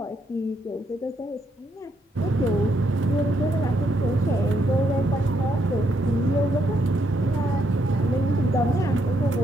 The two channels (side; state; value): both; normal; correlation 0.76